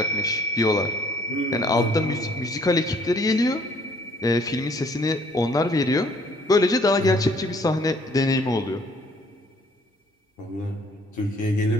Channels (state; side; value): normal; both; correlation 0.61